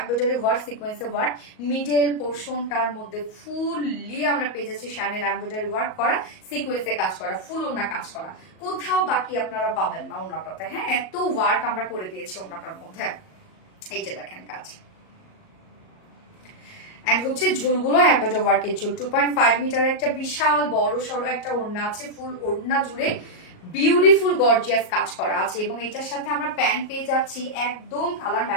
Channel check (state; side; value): late; right; 38 ms